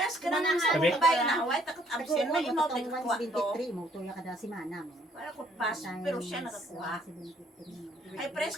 ka na sa Gabi? kabay na Hawaii, takot absent, may Ako imote mo kuha to. 173 mo tuya kada semana mo. Para ko pas, pero siya nakakuha. Ay, press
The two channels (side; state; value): both; normal; correlation 0.64